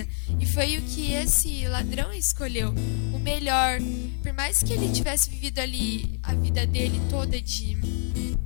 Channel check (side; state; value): right; silent; 55 dB below the other